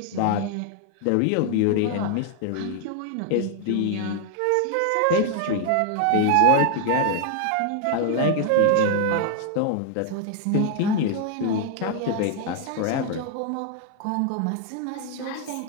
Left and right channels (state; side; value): different; both; correlation 0.00